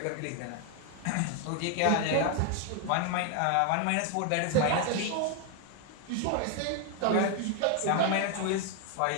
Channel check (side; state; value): both; different; correlation 0.01